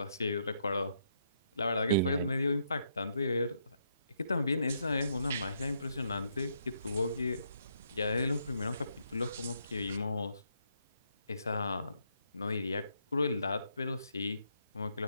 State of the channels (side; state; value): both; inverted; correlation -0.76